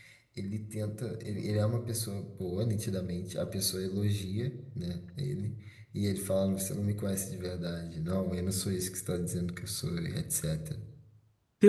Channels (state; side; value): identical; both; correlation 1.00